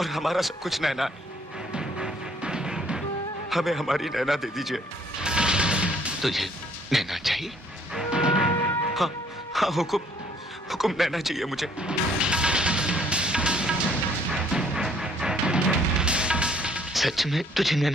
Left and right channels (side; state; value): both; normal; correlation 0.62